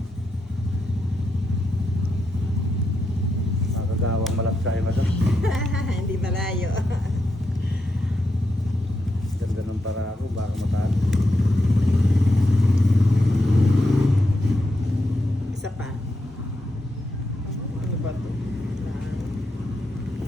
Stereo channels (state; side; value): normal; both; correlation 0.84